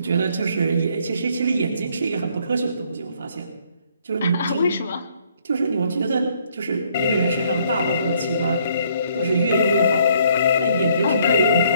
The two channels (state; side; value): inverted; both; correlation -0.65